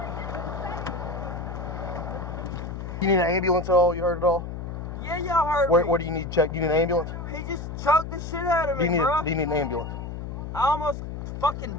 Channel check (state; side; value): noise; left; hum, 7 dB below the sound